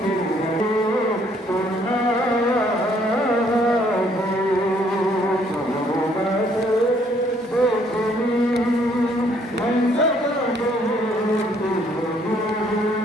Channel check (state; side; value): normal; both; correlation 0.65